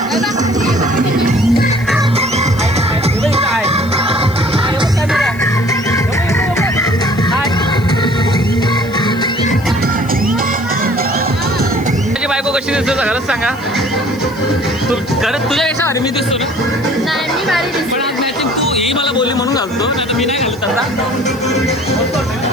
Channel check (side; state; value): left; noise; hiss, 23 dB below the sound